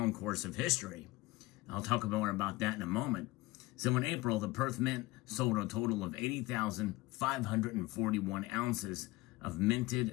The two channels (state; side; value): quieter; right; 20.3 dB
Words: course of history. I'll talk more about that in a moment. So in April, the Perth Mint sold a total of 80,541 ounces of